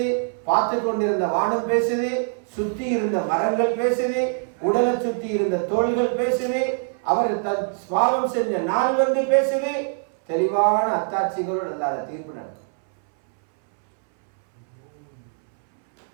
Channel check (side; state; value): left; silent; 61 dB below the other